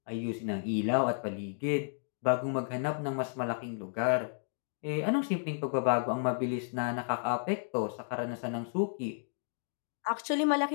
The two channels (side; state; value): right; silent; digital silence